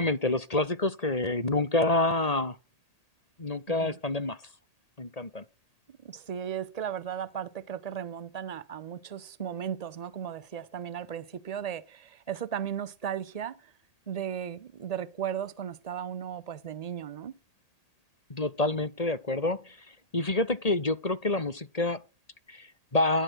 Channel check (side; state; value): right; late; 1.8 ms